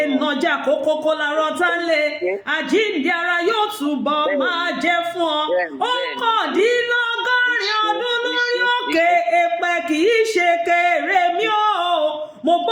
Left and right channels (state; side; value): identical; both; correlation 1.00